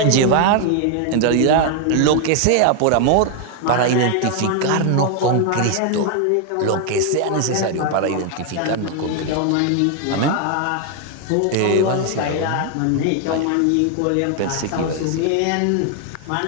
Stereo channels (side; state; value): both; different; correlation 0.00